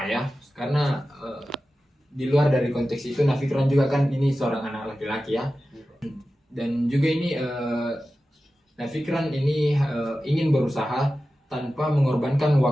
ayah, karena di luar dari konteks itu Nafikran juga kan ini seorang anak laki-laki ya, dan juga ini Nafikran ini ingin berusaha tanpa mengorbankan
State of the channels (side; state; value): both; normal; correlation 0.94